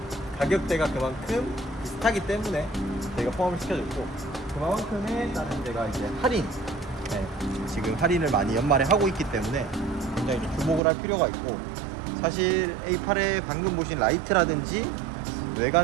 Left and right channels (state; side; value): drops out; left; at 10.8 s